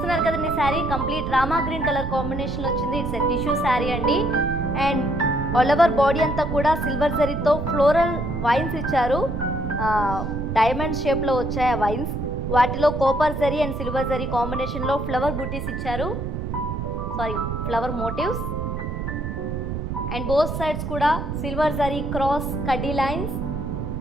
కదండి, saree complete Rama green colour combination వచ్చింది. ఇట్స్ ఎ టిష్యూ శారీ అండి. అండ్ ఆల్ ఓవర్ బాడీ అంతా కూడా సిల్వర్ జరీతో ఫ్లోరల్ వైన్స్ ఇచ్చారు. డైమండ్ షేప్లో వచ్చాయి ఆ వైన్స్. వాటిలో copper zari and silver zari కాంబినేషన్లో ఫ్లవర్ బూటీస్ ఇచ్చారు, flower motifs. And both sides కూడా సిల్వర్ జరీ క్రాస్ కడ్డీ లైన్స్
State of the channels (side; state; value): right; noise; rumble, 4 dB below the sound